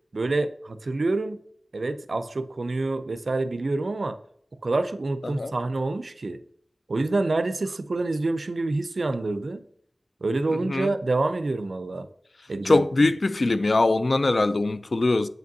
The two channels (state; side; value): normal; both; correlation 0.95